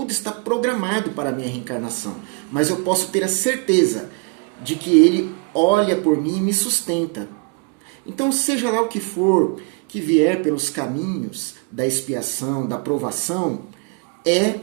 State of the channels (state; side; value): quieter; left; 32.9 dB